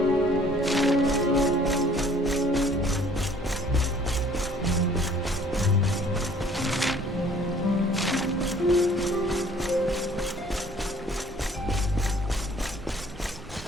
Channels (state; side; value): normal; both; correlation 0.56